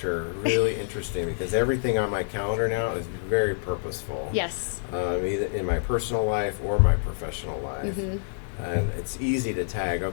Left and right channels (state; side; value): silent; right; 60 dB below the other